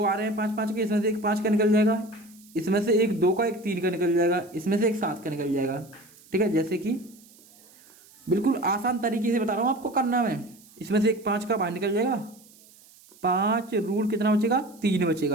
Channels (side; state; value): right; noise; hiss, 26 dB below the sound